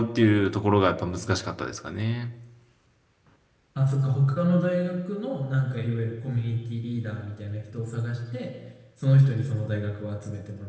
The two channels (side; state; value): both; identical; correlation 1.00